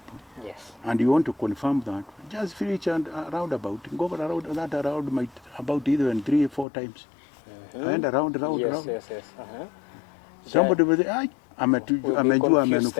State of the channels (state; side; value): drops out; right; at 6.7 s